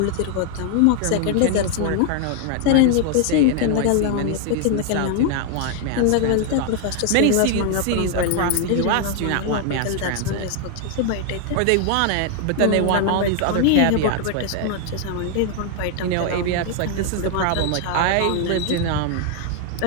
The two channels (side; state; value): both; different; correlation 0.00